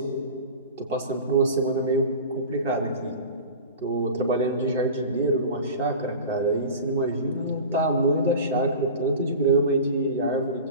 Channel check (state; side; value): inverted; both; correlation -0.34